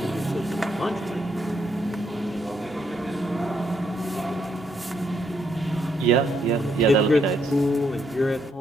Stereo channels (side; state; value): both; normal; correlation 0.75